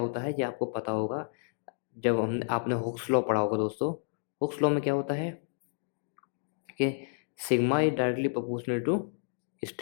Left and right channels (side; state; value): right; silent; digital silence